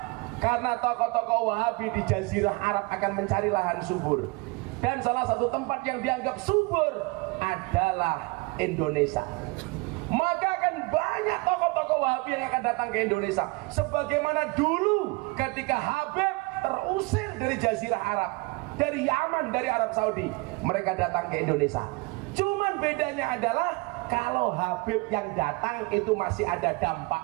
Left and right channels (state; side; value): quieter; left; 26.3 dB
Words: Karena tokoh-tokoh Wahabi di Jazirah Arab akan mencari lahan subur. Dan salah satu tempat yang dianggap subur adalah Indonesia. Maka akan banyak tokoh-tokoh Wahabi yang akan datang ke Indonesia. Sebagaimana dulu ketika Habib terusir dari Jazirah Arab, dari Yaman, dari Arab Saudi, mereka datang ke Indonesia. Cuman bedanya adalah kalau Habib yang datang itu masih ada